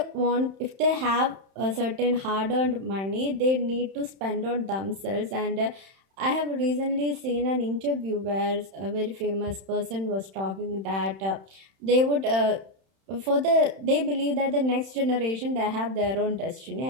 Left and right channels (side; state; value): left; late; 31 ms